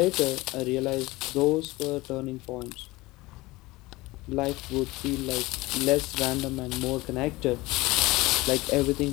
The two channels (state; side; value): quieter; right; 20.7 dB